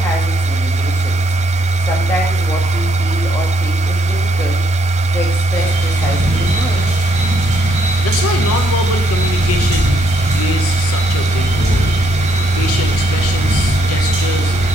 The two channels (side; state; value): both; normal; correlation 0.72